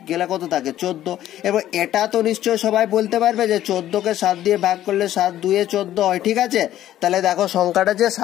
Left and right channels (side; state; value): right; quieter; 12.7 dB